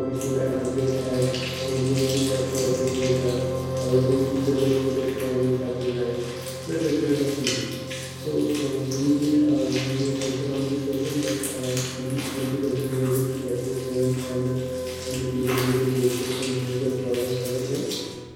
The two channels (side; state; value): both; identical; correlation 1.00